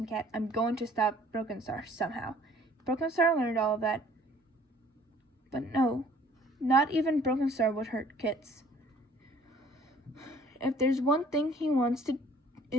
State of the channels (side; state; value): both; normal; correlation 0.55